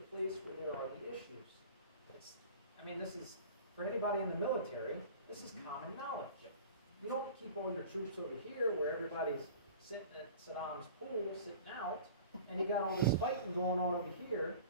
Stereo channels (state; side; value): inverted; both; correlation -0.41